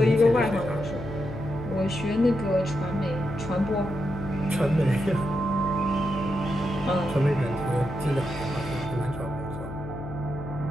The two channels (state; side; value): noise; left; hum, 9 dB below the sound